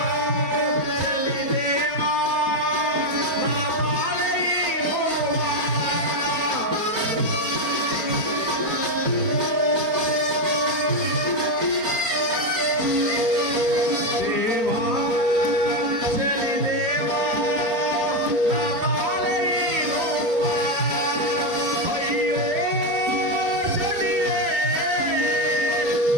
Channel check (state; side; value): late; left; 4.4 ms